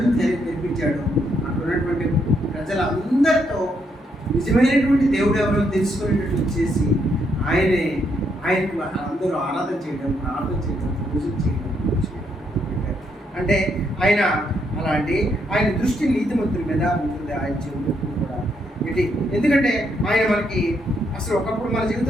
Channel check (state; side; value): normal; both; correlation 0.76